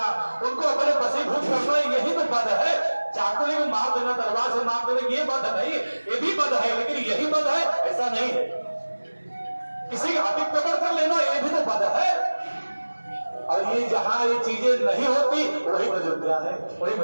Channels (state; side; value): inverted; both; correlation -1.00